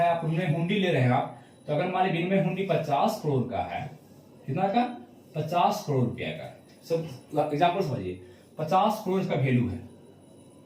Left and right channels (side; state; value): both; identical; correlation 1.00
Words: आप विनिमय हुंडी ले रहे हैं आप, तो अगर मान लीजिए विनिमय हुंडी 50 करोड़ का है, कितना का? 50 करोड़ रुपया का। सब एग्जाम्पल समझिए, 50 करोड़ का वैल्यू है